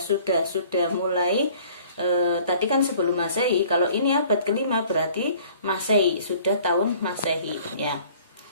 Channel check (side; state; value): both; inverted; correlation -0.53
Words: mulai tadi kan sebelum Masehi. Kalau ini abad kelima berarti Masehi, sudah tahun Masehi ya.